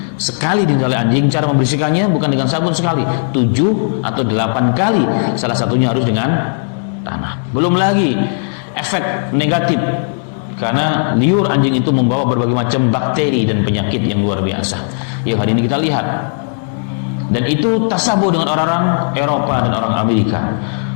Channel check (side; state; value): right; silent; digital silence